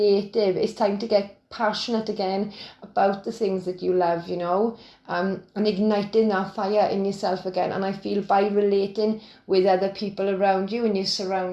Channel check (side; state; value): both; identical; correlation 1.00